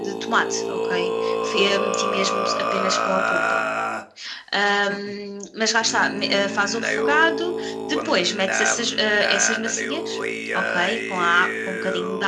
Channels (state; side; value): identical; both; correlation 1.00